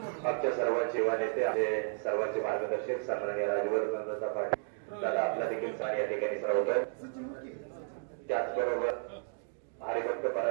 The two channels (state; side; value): silent; left; digital silence